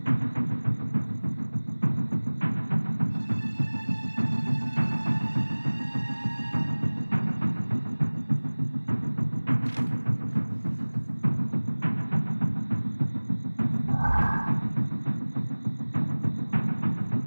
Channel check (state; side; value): inverted; both; correlation -1.00